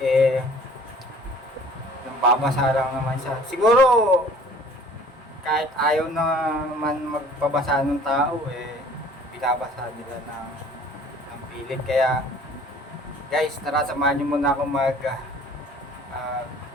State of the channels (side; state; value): both; normal; correlation 0.51